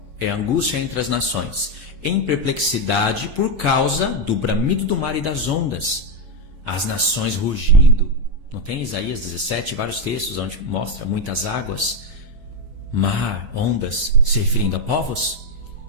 É angústia entre as nações. Em perplexidade por causa do bramido do mar e das ondas. As nações rugindo. Não tem Isaías 17, vários textos onde mostra muitas águas, mar, ondas, se referindo a povos?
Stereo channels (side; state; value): left; late; 6.1 ms